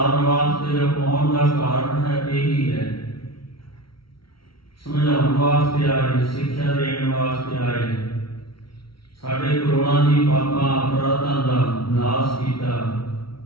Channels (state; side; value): late; right; 0.74 ms